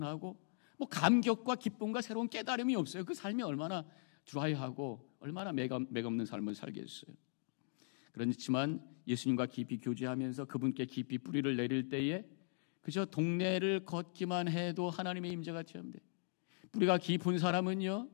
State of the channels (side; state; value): right; silent; digital silence